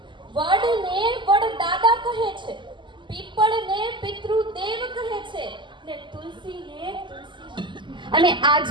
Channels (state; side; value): late; left; 0.23 ms